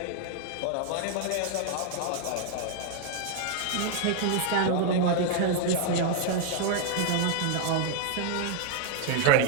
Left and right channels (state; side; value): different; both; correlation 0.00